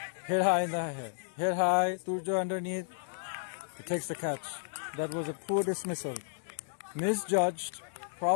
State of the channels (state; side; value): silent; right; digital silence